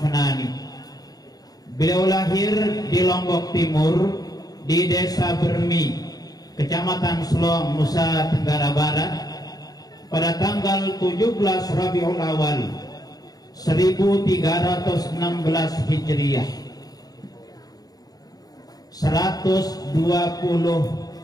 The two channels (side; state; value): right; late; 0.18 ms